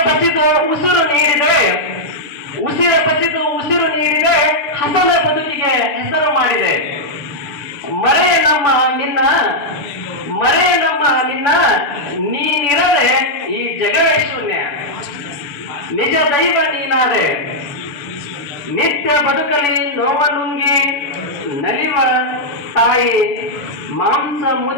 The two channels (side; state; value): right; late; 6.9 ms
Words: ಬಸಿದು ಉಸಿರು ನೀಡಿದೆ, ಉಸಿರು ಬಸಿದು ಉಸಿರು ನೀಡಿದೆ, ಹಸನ ಬದುಕಿಗೆ ಹೆಸರು ಮಾಡಿದೆ. ಮರೆ ನಮ್ಮ ನಿನ್ನ ನೀನಿರದೆ ಈ ಜಗವೇ ಶೂನ್ಯ, ನಿಜ ದೈವ ನೀನಾದೆ. ನಿತ್ಯ ಬದುಕಲಿ ನೋವ ನುಂಗಿ ನಲಿವ ತಾಯಿ, ಮಾಂಸ